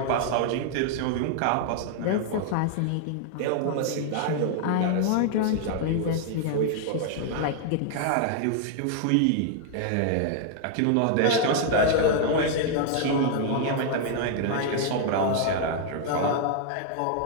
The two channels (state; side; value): different; both; correlation 0.00